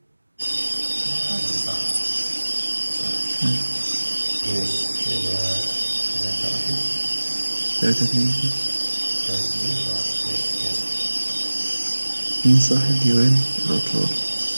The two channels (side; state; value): both; inverted; correlation -1.00